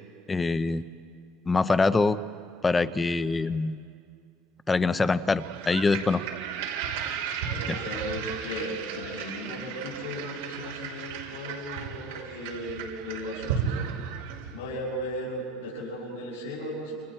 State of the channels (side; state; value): both; normal; correlation 0.68